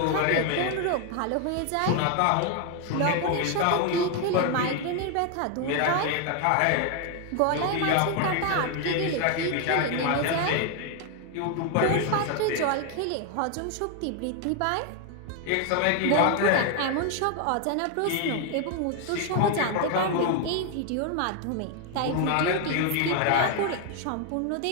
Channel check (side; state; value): both; different; correlation 0.01